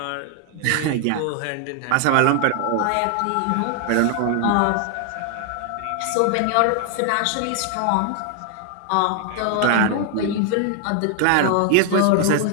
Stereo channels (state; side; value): different; both; correlation 0.00